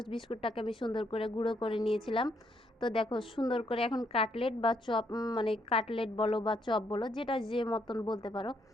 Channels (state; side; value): normal; both; correlation 0.73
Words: বিস্কুটটাকে আমি সুন্দর করে গুঁড়ো করে নিয়েছিলাম। তো দেখো সুন্দর করে এখন কাটলেট বা চপ, মানে কাটলেট বলো বা চপ বলো, যেটা যে মতন বলতে পারো।